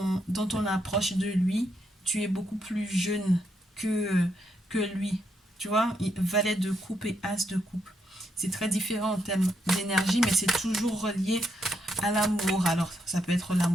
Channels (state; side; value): normal; both; correlation 0.78